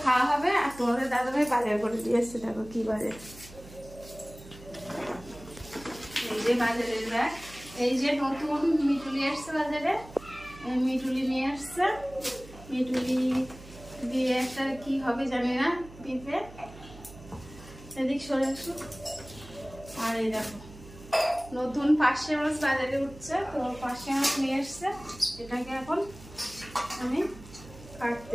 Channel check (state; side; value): noise; right; hum, 18 dB below the sound